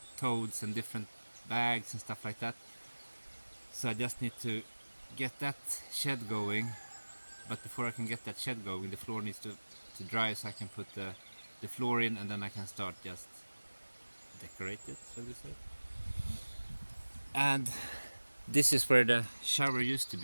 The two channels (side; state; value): both; inverted; correlation -1.00